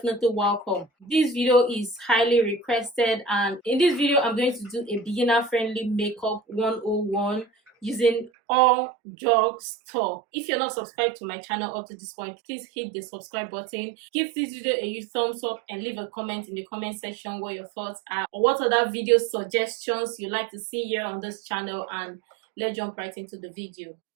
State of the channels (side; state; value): left; drops out; at 8.3 s